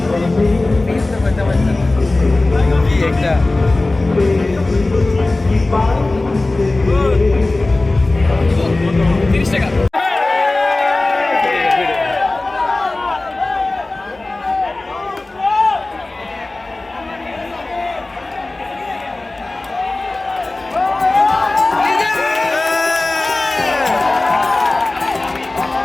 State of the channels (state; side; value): quieter; right; 3.0 dB